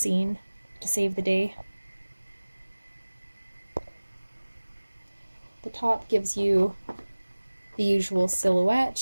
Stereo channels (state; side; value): inverted; both; correlation -1.00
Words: to save the day. The top gives you the usual